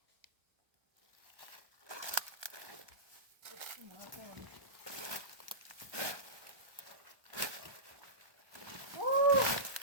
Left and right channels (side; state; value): left; late; 1.3 ms